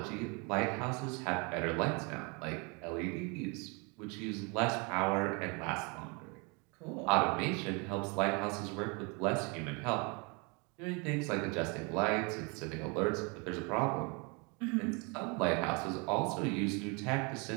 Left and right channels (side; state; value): left; quieter; 31.2 dB